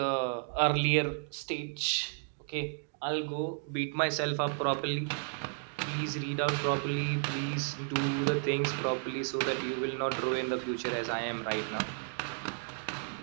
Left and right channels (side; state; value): left; silent; 56 dB below the other